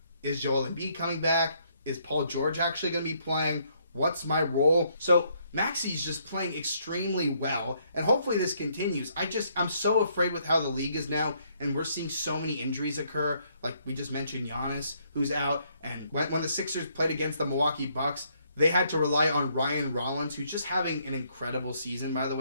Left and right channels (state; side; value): inverted; both; correlation -0.70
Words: is Joel Embiid coming back? Is Paul George actually going to be playing? What's my role? So Maxey's just playing extremely well, and hopefully this continues. I'm so afraid with how the league is now, and we're seeing so many injuries occur. Like we just mentioned, Giannis, who's out, and when the Sixers played against the Milwaukee Bucks, they had to rely on Ryan Rollins, who's just having an incredible season, by the